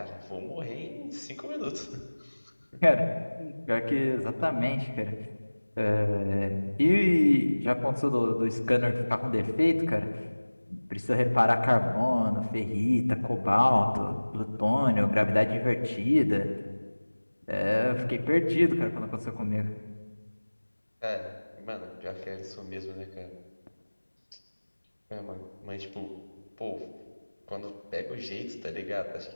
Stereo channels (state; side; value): inverted; both; correlation -1.00